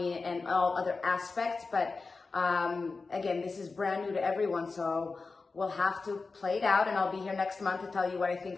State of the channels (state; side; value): quieter; right; 4.1 dB